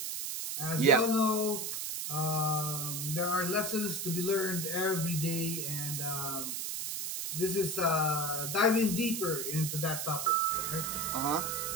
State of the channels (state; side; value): noise; right; hiss, 3 dB below the sound